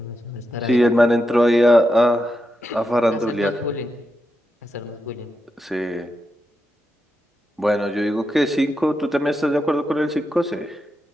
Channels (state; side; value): normal; both; correlation 0.86